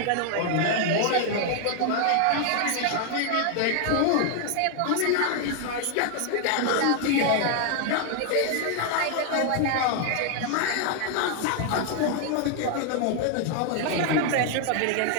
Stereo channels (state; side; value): different; both; correlation 0.00